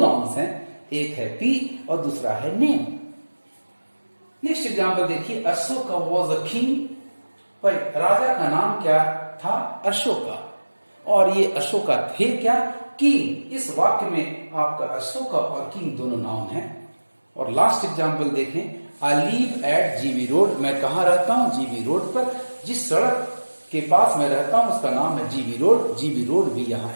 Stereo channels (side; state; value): both; inverted; correlation -1.00